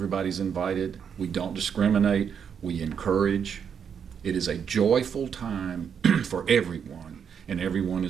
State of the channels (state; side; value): quieter; left; 7.4 dB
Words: invited. We don't discriminate. We encourage. It is a joyful time for everyone, and everyone